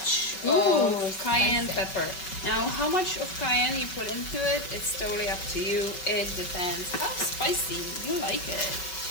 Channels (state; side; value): late; right; 5.4 ms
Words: of cayenne pepper. Now, how much of cayenne you put into it, it's totally up to you. It depends how spicy you like it.